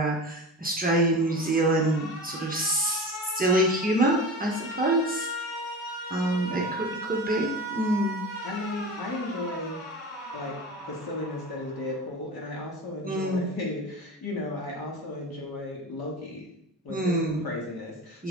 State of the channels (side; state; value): both; normal; correlation 0.31